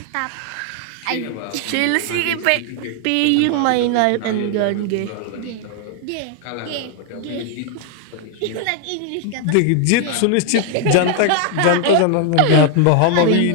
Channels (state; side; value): different; both; correlation 0.00